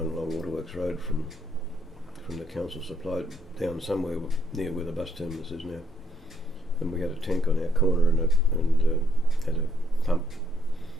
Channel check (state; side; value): normal; both; correlation 0.70